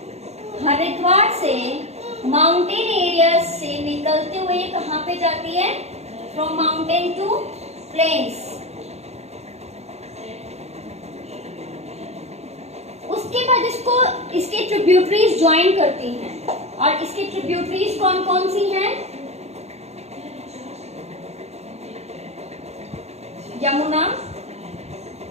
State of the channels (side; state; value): left; late; 0.31 ms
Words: हरिद्वार से माउंटेन एरिया से निकलते हुए कहां पे जाती है, फ्रॉम माउंटेन टू प्लेन्स। उसके बाद इसके ट्रिब्यूटरीज ज्वाइन करती हैं, और इसकी ट्रिब्यूटरीज कौन कौन सी हैं? यमुना,